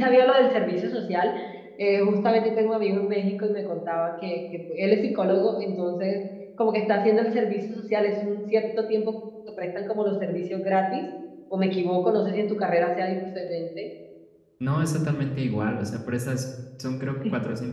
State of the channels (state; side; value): identical; both; correlation 1.00